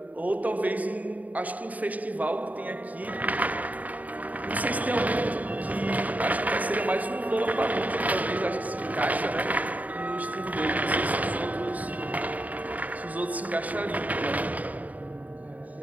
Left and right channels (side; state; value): left; late; 0.074 ms